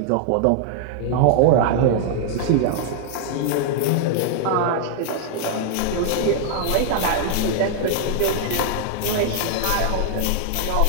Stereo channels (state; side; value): different; both; correlation 0.00